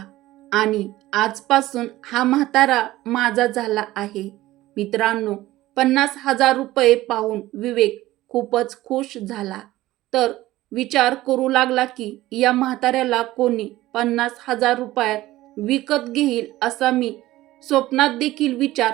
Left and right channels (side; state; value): left; quieter; 16.6 dB